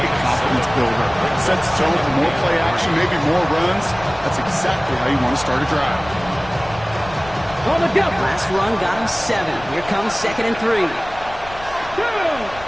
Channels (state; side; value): noise; left; rumble, 17 dB below the sound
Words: a confidence builder. Sets the tone for more play action, maybe more runs. That's exactly how you want to start a drive. On the go. Last run got him 7. Here comes 2nd and 3.